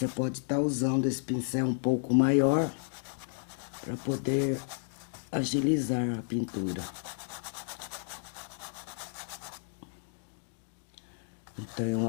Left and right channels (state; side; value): silent; right; digital silence